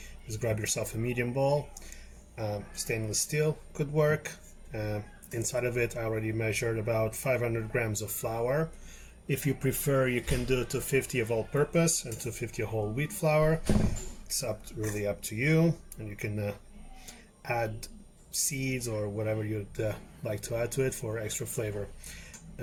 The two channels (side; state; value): both; identical; correlation 1.00